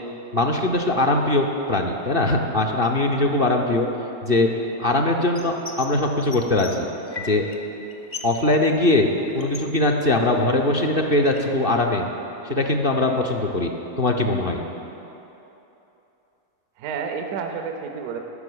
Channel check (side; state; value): left; late; 2.7 ms